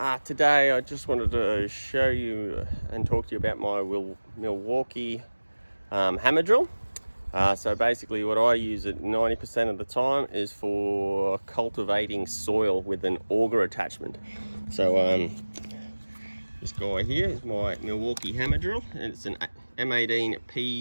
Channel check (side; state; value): both; inverted; correlation -1.00